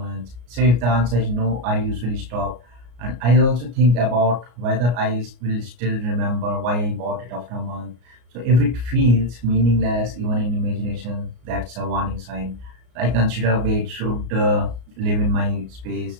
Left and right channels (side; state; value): left; late; 33 ms